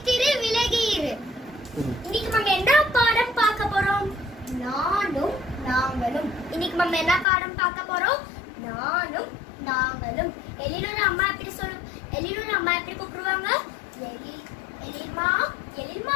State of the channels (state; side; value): drops out; right; at 7.2 s